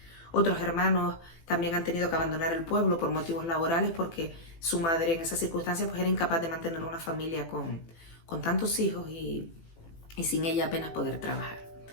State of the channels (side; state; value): right; late; 18 ms